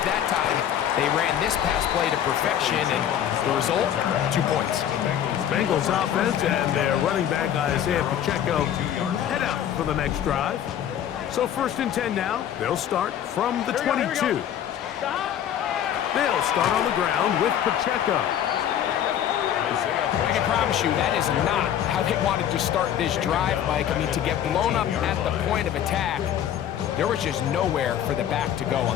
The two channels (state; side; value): quieter; right; 10.2 dB